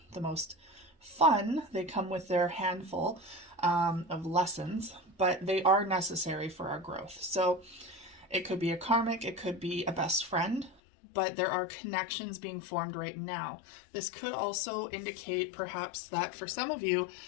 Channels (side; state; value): right; drops out; at 10.8 s